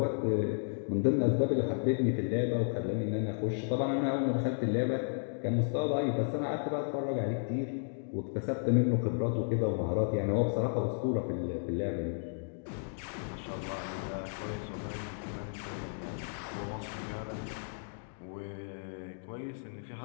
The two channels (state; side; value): silent; right; digital silence